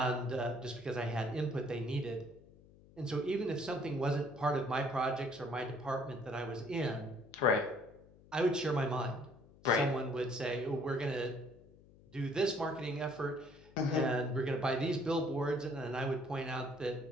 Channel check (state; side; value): noise; left; hum, 24 dB below the sound